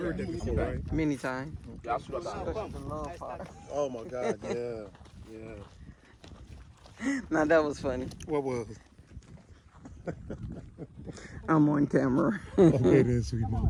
that before, right? Many times. Oh my God, yeah. Now that was funny. What was it? I'm on camera. Okay then, sweet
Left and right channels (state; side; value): identical; both; correlation 1.00